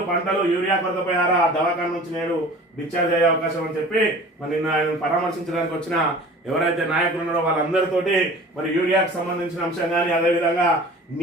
పంటలు యూరియా కొరతపై దవాఖాన నుంచి నేడు డిశ్చార్జ్ అయ్యే అవకాశం అని చెప్పి మరి నిన్న ఆయన పరామర్శించడానికి వచ్చిన ఎవరైతే నాయకులు ఉన్నారో వాళ్ళందరితోటి మరి యూరియాకు సంబంధించిన అంశం కానీ అదేవిధంగా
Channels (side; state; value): both; normal; correlation 0.43